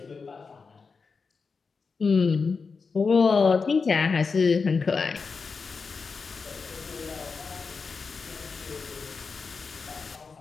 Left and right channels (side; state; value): right; quieter; 4.9 dB